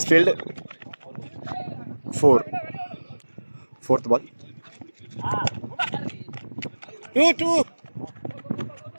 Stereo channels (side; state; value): both; inverted; correlation -1.00